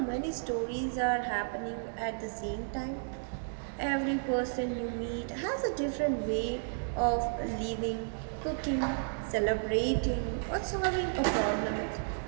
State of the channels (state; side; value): silent; left; digital silence